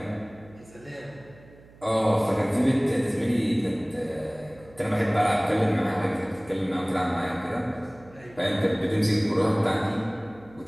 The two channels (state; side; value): noise; right; hum, 24 dB below the sound